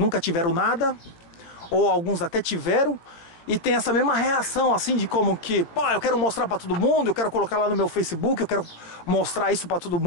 tiveram nada, ou alguns até tiveram, e tem essa mesma reação assim de como que, pô, eu quero mostrar para todo mundo, eu quero colocar lá no meu Facebook, eu quero mostrar isso para todo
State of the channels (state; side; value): late; right; 18 ms